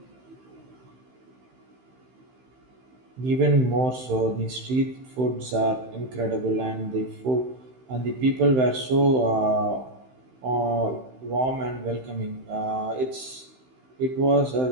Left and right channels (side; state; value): left; late; 16 ms